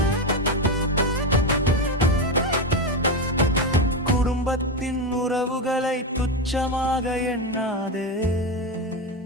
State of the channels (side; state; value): both; normal; correlation 0.13